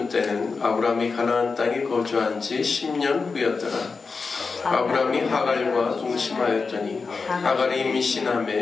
때는 아브라함이 가나안 땅에 거주한 지 10년 후였더라. 아브라함이 하갈과 동침하였더니 하갈이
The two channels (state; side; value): quieter; right; 4.6 dB